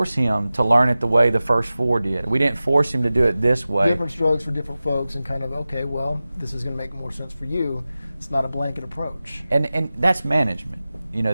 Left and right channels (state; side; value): inverted; both; correlation -0.96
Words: him to learn it the way the first 4 did. We didn't force him to do it this way. Different strokes for different folks, and kind of, okay, well, this is going to make more sense for you. It's not a blanket approach. And that's management.